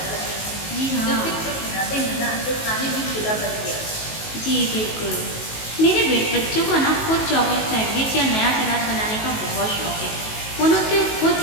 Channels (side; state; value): right; late; 19 ms